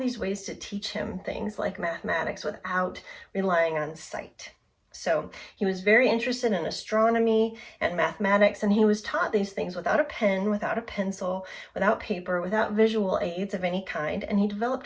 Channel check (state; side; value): identical; both; correlation 1.00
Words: ways to teach him things like mathematics without relying on sight. So he was very interested in astronomy and mathematics, and he was taught these things without a pen, without a pencil, without paper, without visual aids of any kind, and he developed